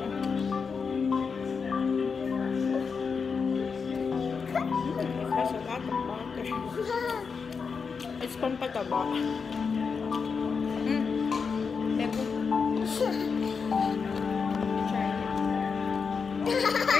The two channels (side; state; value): right; quieter; 5.5 dB